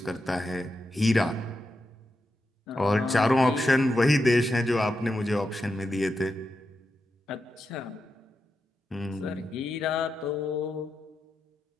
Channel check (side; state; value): both; normal; correlation 0.88